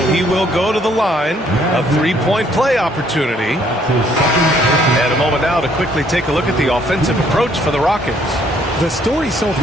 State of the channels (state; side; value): normal; both; correlation 0.65